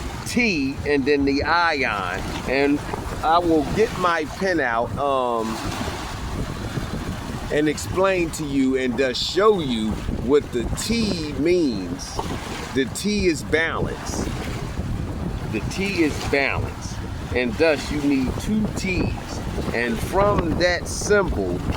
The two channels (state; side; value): identical; both; correlation 1.00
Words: T, and then the ion. And I will get my pen out and explain to you and thus show you what the T means. The T is balance. The T is balance. And thus you need two T's. And from that symbol,